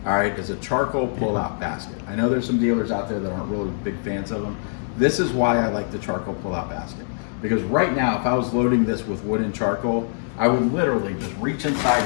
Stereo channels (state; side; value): silent; right; digital silence